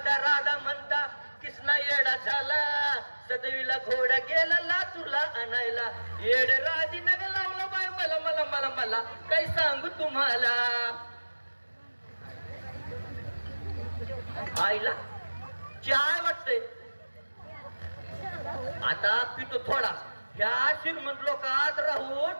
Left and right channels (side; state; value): both; inverted; correlation -1.00